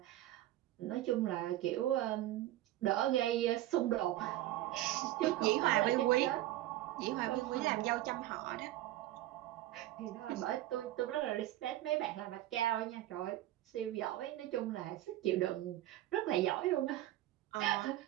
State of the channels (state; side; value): quieter; left; 14.8 dB